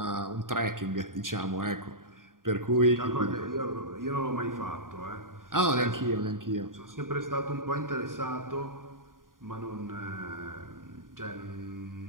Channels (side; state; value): left; late; 0.90 ms